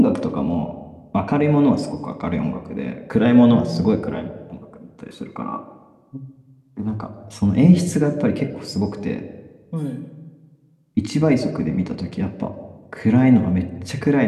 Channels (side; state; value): both; identical; correlation 1.00